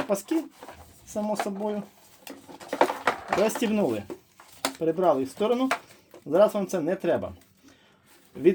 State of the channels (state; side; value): identical; both; correlation 1.00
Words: паски, само собою. Розтібнули. Перебрали їх в сторону. Зараз вам це не треба.